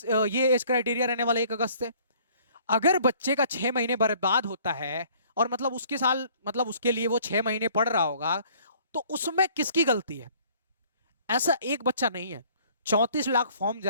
ये एज क्राइटेरिया रहने वाला 1 अगस्त से। अगर बच्चे का 6 महीने बर्बाद होता है, और मतलब उसके साल, मतलब उसके लिए वो 6 महीने पढ़ रहा होगा, तो उसमें किसकी गलती है। ऐसा एक बच्चा नहीं है, 34 लाख फॉर्म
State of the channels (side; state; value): both; inverted; correlation -0.56